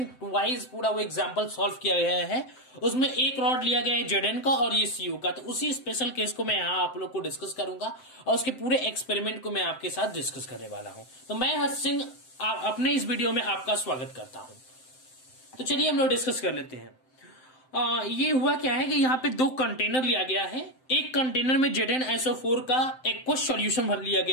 वाइज पूरा वो एग्जाम्पल सॉल्व किया गया है। उसमें एक रॉड लिया गया है जेडन का और ये सीयू का, तो उसी स्पेशल केस को मैं यहाँ आप लोग को डिस्कस करूंगा और उसके पूरे एक्सपेरिमेंट को मैं आपके साथ डिस्कस करने वाला हूँ। तो मैं हर्ष सिंह अपने इस वीडियो में आपका स्वागत करता हूँ। तो चलिए हम लोग डिस्कस कर लेते हैं। ये हुआ क्या है कि यहाँ पे दो कंटेनर लिया गया है। एक कंटेनर में ZnSO4 का एक्वस सॉल्यूशन भर लिया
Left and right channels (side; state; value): right; late; 7.7 ms